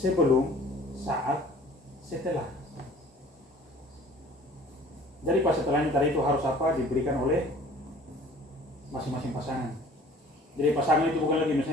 saat, setelah. Jadi pas setelahnya tadi itu harus apa diberikan oleh masing-masing pasangan. Jadi pasangan itu bukan lagi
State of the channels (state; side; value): normal; both; correlation 0.50